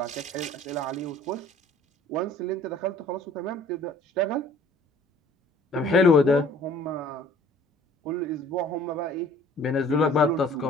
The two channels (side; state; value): both; normal; correlation 0.53